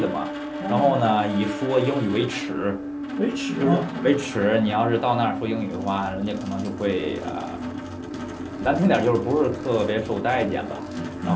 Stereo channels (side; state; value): both; identical; correlation 1.00